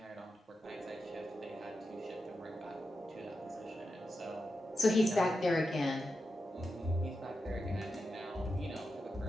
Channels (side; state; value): both; normal; correlation 0.89